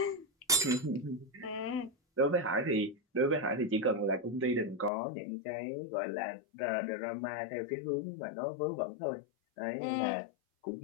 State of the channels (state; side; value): drops out; right; at 4.9 s